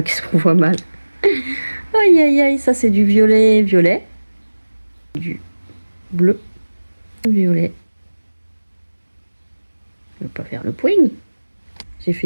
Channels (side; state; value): both; inverted; correlation -1.00